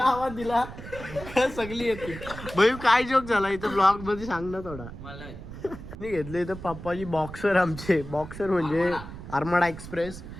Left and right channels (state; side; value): noise; right; rumble, 12 dB below the sound